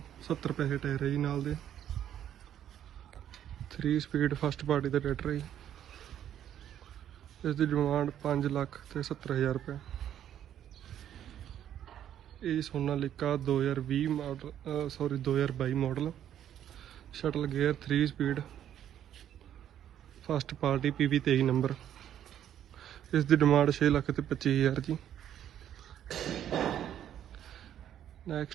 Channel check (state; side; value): quieter; left; 10.5 dB